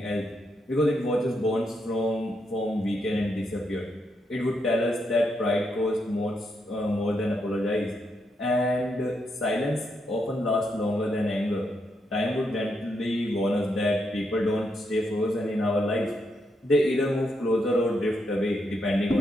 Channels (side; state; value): both; normal; correlation 0.80